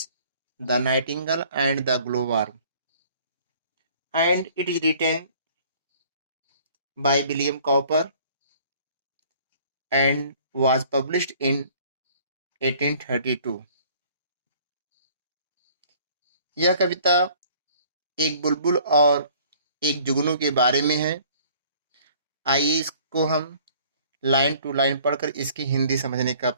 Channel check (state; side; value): inverted; both; correlation -0.55